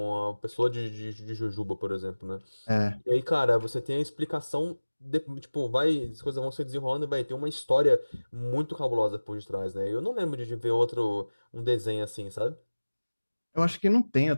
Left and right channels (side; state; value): both; inverted; correlation -1.00